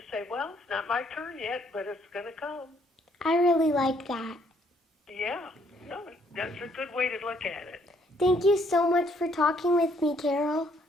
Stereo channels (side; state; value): both; normal; correlation 0.67